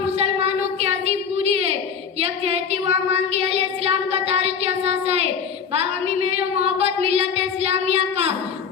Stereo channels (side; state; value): right; quieter; 6.9 dB